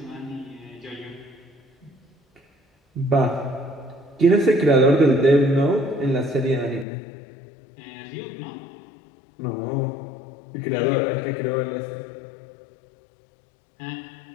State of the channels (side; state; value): right; drops out; at 6.9 s